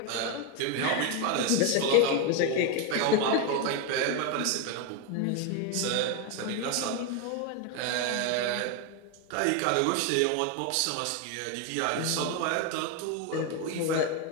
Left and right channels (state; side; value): different; both; correlation 0.02